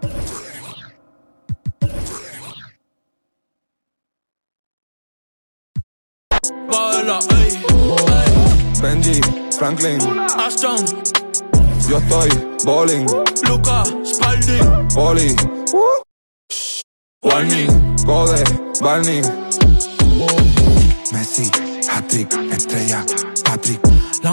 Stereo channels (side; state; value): both; inverted; correlation -1.00